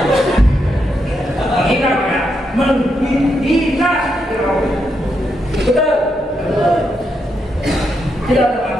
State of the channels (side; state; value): both; normal; correlation 0.81